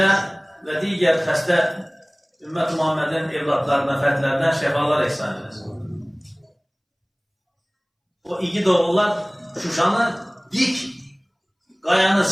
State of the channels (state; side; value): identical; both; correlation 1.00